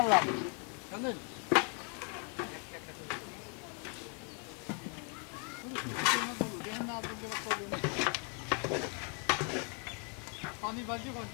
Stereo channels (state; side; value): quieter; right; 38.7 dB